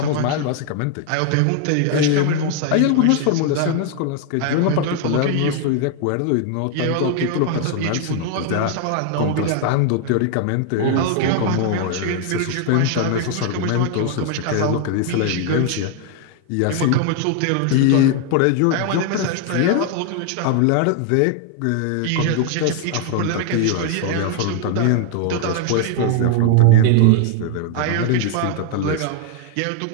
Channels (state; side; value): different; both; correlation 0.00